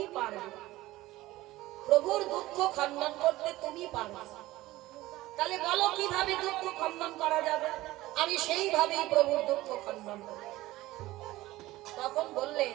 পারবে। প্রভুর দুঃখ খণ্ডন করতে তুমি পারবে। তাহলে বলো কিভাবে দুঃখ খণ্ডন করা যাবে? আমি সেইভাবেই প্রভুর দুঃখ খণ্ডন করব। তখন বললে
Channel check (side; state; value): left; quieter; 17.5 dB